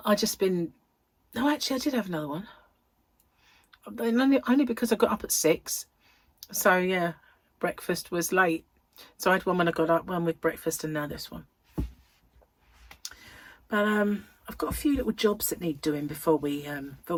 I just been, no, actually I did have another one. Only because I got up at 6. So yeah, breakfast was late. So I had one when I got up, one with breakfast, and now this one. But I've got a few little jobs that need doing before we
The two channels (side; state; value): both; identical; correlation 1.00